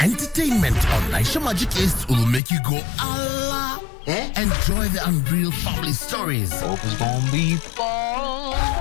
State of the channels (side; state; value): right; drops out; at 2.4 s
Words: on Naisha Magic East will make you go Allah. Enjoy the unreal family stories. Hope it's gonna be fun.